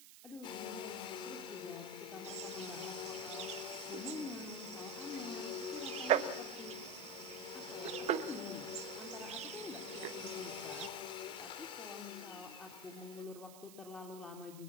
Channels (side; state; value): right; noise; hiss, 15 dB below the sound